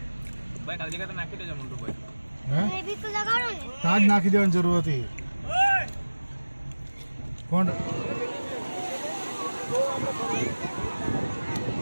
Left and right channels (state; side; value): inverted; both; correlation -1.00